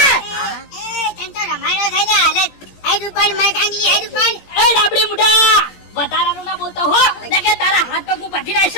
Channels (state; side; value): late; right; 17 ms